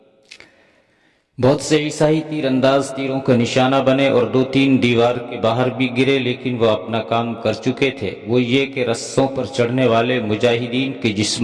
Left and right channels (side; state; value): both; identical; correlation 1.00